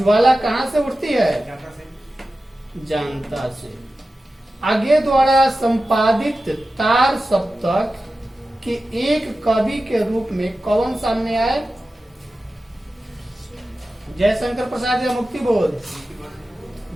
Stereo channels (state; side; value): normal; both; correlation 0.94